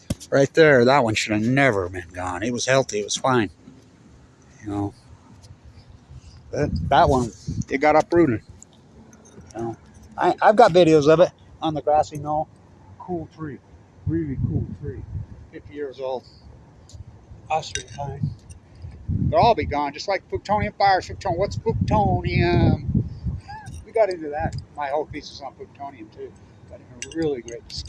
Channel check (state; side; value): identical; both; correlation 1.00